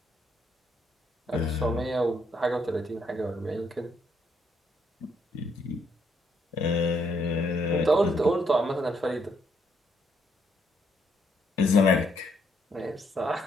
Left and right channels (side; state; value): both; normal; correlation 0.73